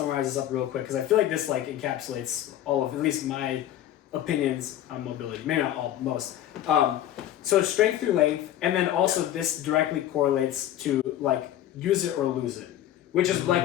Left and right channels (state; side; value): quieter; right; 12.2 dB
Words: this up real quick because I feel like this like encapsulates all of at least my opinions on mobility. Maybe not all, most. So strength through length, and then also this directly correlates to like use it or lose it, which is